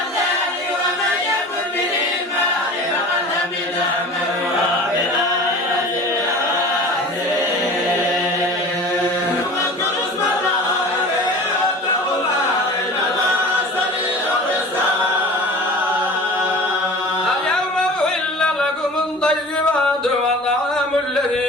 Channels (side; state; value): both; normal; correlation 0.39